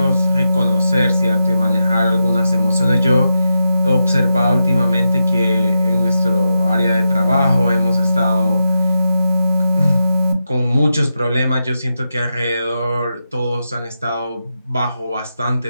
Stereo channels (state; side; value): inverted; both; correlation -0.88